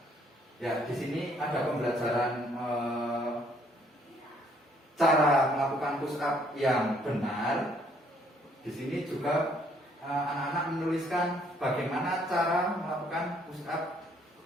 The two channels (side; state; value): both; normal; correlation 0.65